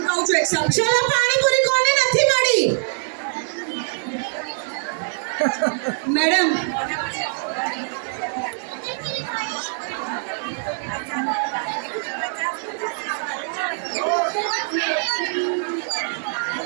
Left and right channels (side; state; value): left; silent; digital silence